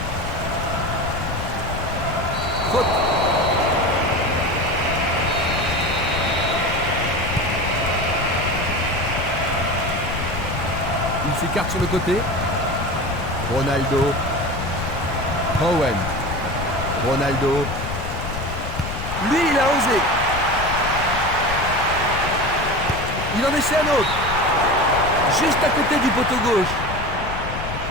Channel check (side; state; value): left; noise; rumble, 7 dB below the sound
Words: Faute. Il s'écarte sur le côté. Ronaldo. Owen. Ronaldo. Lui, il a osé. Il en essaie un autre. Juste à côté du poteau gauche.